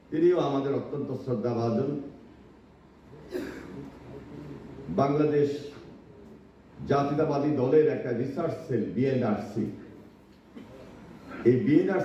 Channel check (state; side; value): identical; both; correlation 1.00